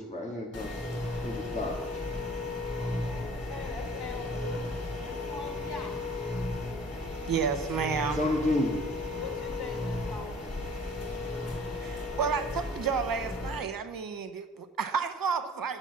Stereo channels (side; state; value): both; normal; correlation 0.49